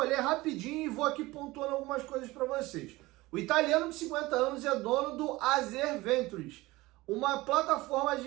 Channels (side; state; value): left; quieter; 20.1 dB